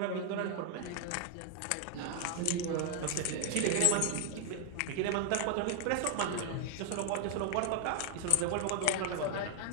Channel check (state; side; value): different; both; correlation 0.00